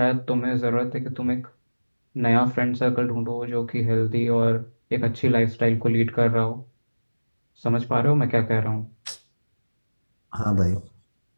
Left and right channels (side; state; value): both; inverted; correlation -1.00